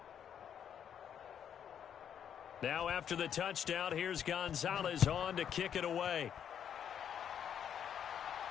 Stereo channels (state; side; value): quieter; right; 8.8 dB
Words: Now after the touchdown, here's Gonzalez on to kick it away.